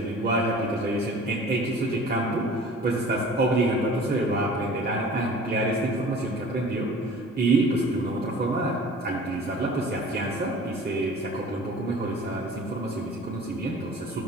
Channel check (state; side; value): normal; both; correlation 0.44